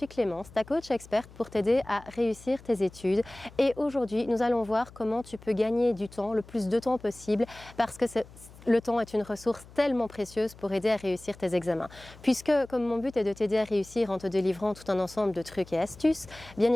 Clémence, ta coach experte pour t'aider à réussir tes études. Et aujourd'hui, nous allons voir comment tu peux gagner du temps, le plus de temps possible, parce que le temps est une ressource tellement précieuse pour aider à réussir tes examens. Puisque, comme mon but est de t'aider à réussir en te délivrant tout un ensemble de trucs et astuces, bien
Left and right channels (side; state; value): left; noise; hum, 21 dB below the sound